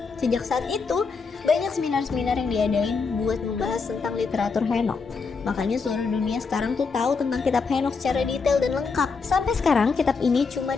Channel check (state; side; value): quieter; right; 4.9 dB